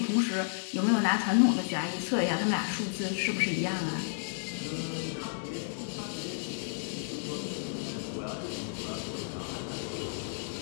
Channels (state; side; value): silent; right; digital silence